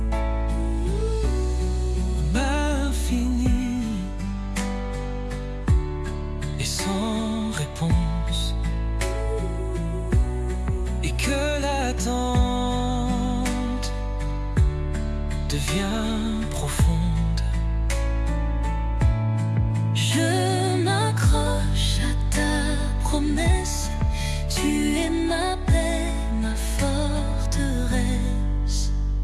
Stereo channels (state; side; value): identical; both; correlation 1.00